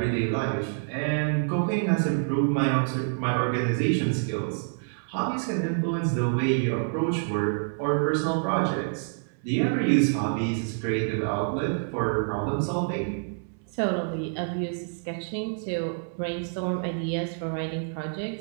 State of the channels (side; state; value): left; silent; 60 dB below the other